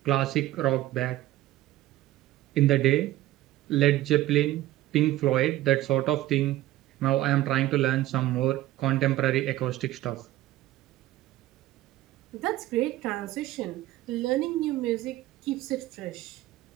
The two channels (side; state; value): left; quieter; 15.5 dB